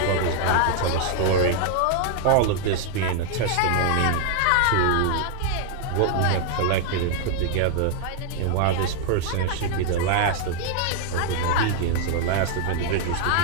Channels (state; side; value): different; both; correlation 0.00